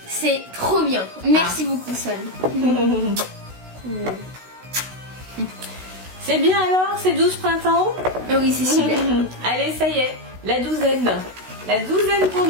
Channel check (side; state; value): left; late; 16 ms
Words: C'est trop bien. Merci beaucoup, Swan. C'est bien alors, c'est 12 printemps? Ah oui, c'est super. Allez, ça y est, la douzaine. La douzaine pour